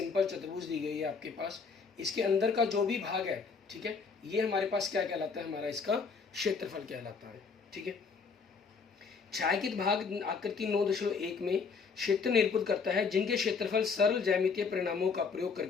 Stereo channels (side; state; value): right; quieter; 5.2 dB